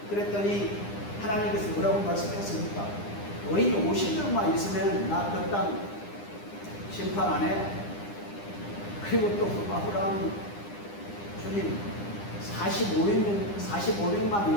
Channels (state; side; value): late; right; 9.9 ms